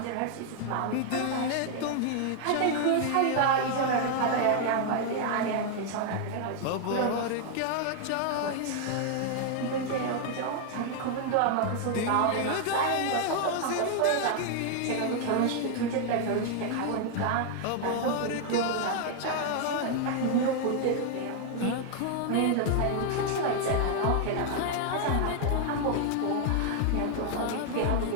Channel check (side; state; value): both; different; correlation 0.00